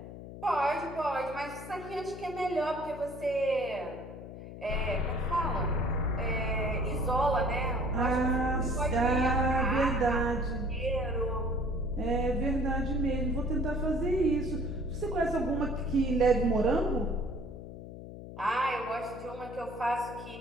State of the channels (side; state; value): left; noise; hum, 12 dB below the sound